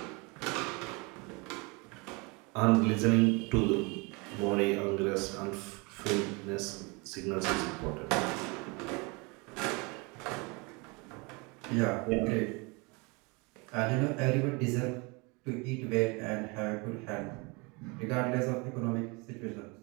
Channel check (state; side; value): quieter; left; 28.5 dB